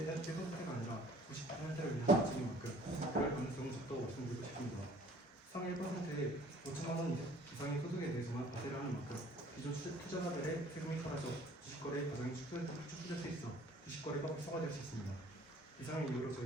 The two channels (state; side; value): normal; both; correlation 0.54